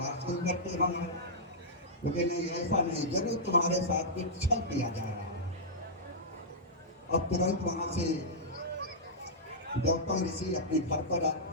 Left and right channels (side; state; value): both; normal; correlation -0.11